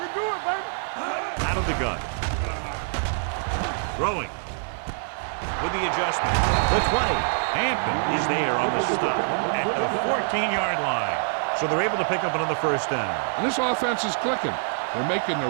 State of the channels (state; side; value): silent; left; 59 dB below the other